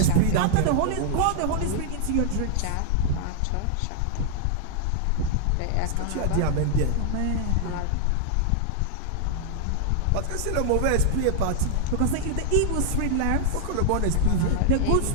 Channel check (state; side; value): different; both; correlation -0.01